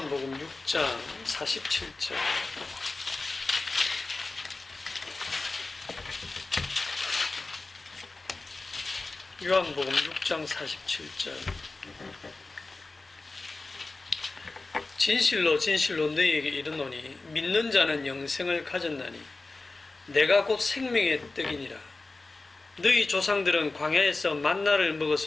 6장 47절. 요한복음 6장 47절. 진실로 진실로 너희에게 이르노니 믿는 자는 영생을 가졌나니 내가 곧 생명의 떡이니라. 너희 조상들은 광야에서 만나를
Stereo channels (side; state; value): right; quieter; 3.4 dB